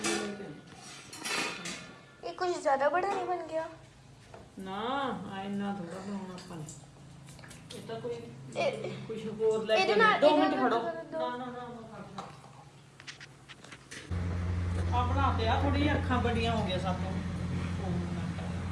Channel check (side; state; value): both; identical; correlation 1.00